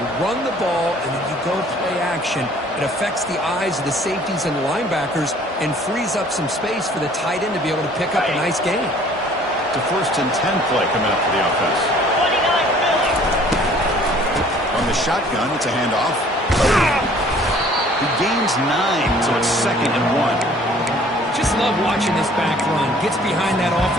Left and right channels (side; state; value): both; normal; correlation 0.54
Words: You run the ball, and then you go play action. It affects the eyes of the safeties and the linebackers and frees up some space for the tight end to be able to pick up a nice gain. The 1st and 10 play coming up for the offense. On the shotgun, it's a handoff. He gains 9, so it's 2nd and 1. Just love watching this back run. Gets behind that